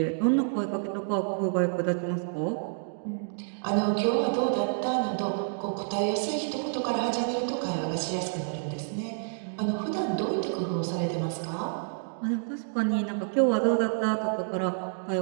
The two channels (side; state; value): left; silent; digital silence